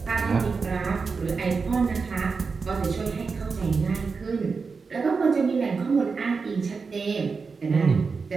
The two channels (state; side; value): quieter; left; 4.8 dB